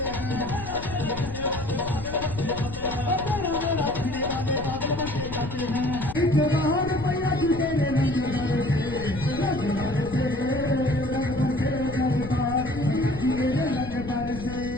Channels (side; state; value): left; noise; rumble, 11 dB below the sound